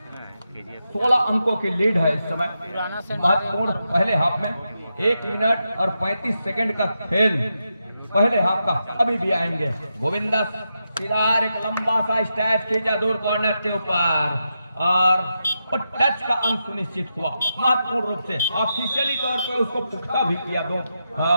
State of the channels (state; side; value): inverted; both; correlation -0.86